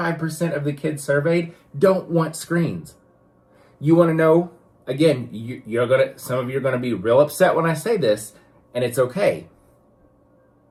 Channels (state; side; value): identical; both; correlation 1.00